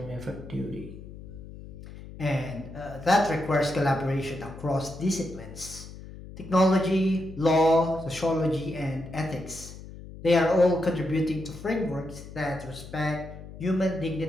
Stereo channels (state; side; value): noise; left; hum, 14 dB below the sound